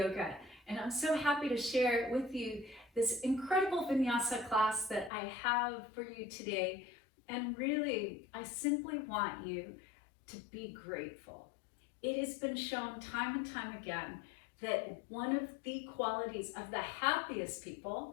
and I'm so happy to share with you this incredible Vinyasa class that I have for you today. And really, I simply want you to be grateful. It has been shown time and time again that one of the qualities of the happiest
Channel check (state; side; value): drops out; right; at 5.1 s